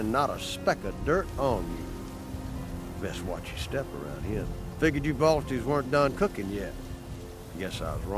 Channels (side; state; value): both; identical; correlation 1.00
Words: not a speck of dirt on you. Best watch your step around here. Figured you Balties weren't done cooking yet. Guess I was